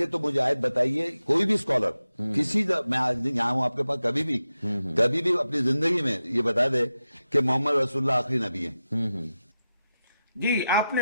تو مجھے آیت بتائیے، کوئی بھی اسکالر کسی میں آج یہاں ہوں آپ کے پاس، کبھی بھی اپنی زندگی میں یہ بتا دے کہ محمد رسول اللہ آخری نبی ہیں۔ جی، آپ نے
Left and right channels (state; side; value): inverted; both; correlation -0.91